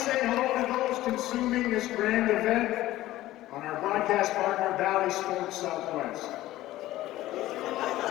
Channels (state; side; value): quieter; right; 15.7 dB